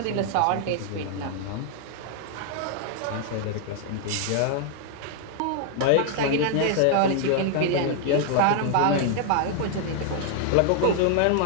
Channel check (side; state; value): both; different; correlation 0.00